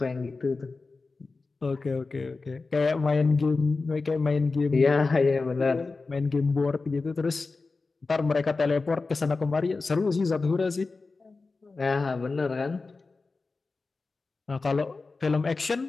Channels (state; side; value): quieter; right; 3.9 dB